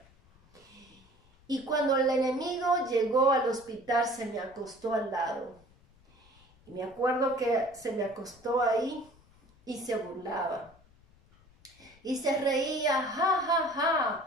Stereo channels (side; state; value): left; noise; rumble, 29 dB below the sound